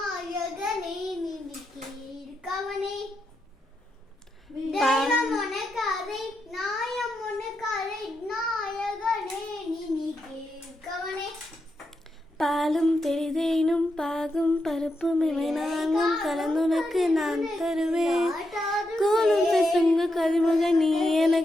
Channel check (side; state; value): both; normal; correlation 0.84